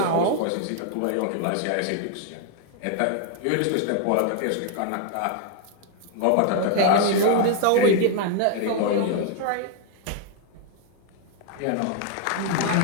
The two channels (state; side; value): different; both; correlation 0.00